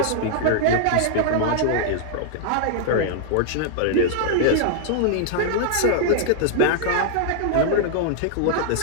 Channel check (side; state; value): both; different; correlation -0.01